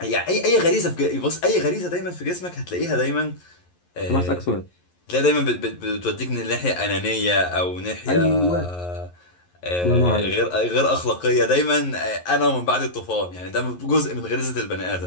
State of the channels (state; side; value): late; right; 11 ms